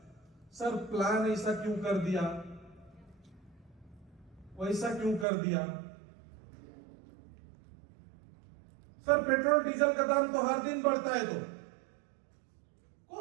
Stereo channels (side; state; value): left; drops out; at 5.2 s